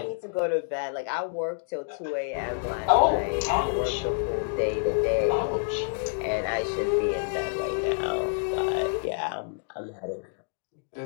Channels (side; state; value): right; silent; digital silence